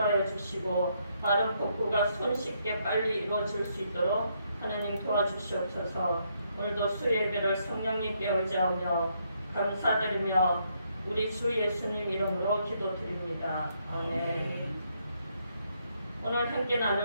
주시고 빠른 복구가 손쉽게 빨리 이루어질 수 있도록 하나님 도와주시옵소서. 오늘도 수요 예배를 성령님께 의지하며 감사드리며 우리 주 예수님 이름으로 기도드립니다. 아멘. 오늘 함께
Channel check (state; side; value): inverted; both; correlation -0.75